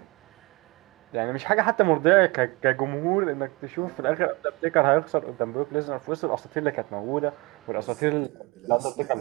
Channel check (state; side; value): quieter; left; 26.3 dB